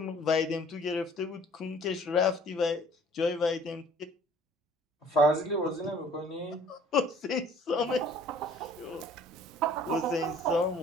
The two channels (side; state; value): both; normal; correlation 0.54